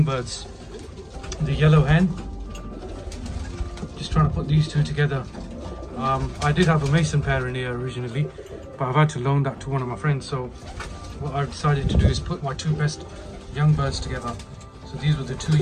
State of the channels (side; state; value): both; identical; correlation 1.00